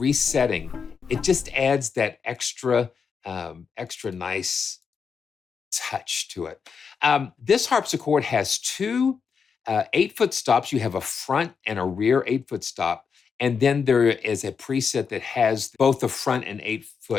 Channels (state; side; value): quieter; right; 6.0 dB